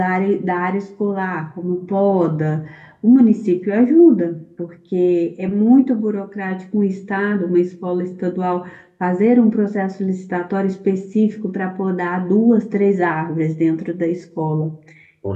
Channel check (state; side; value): identical; both; correlation 1.00